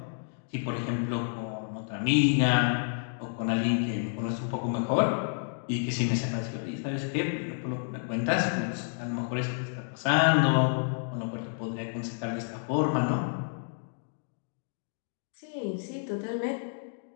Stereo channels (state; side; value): silent; right; digital silence